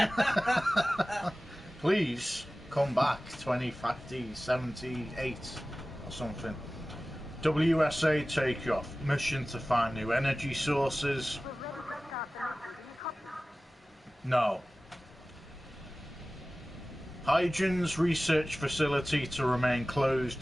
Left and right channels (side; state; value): both; normal; correlation 0.97